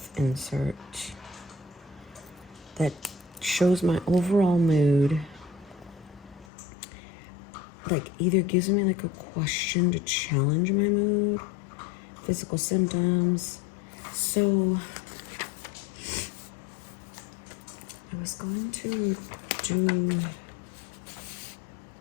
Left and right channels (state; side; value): drops out; right; at 6.5 s